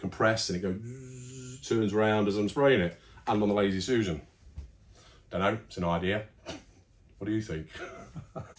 press and it goes, turns around as I'm spraying it. And on the Lazy Susan. Don't know, it's an idea. What do you think?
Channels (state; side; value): identical; both; correlation 1.00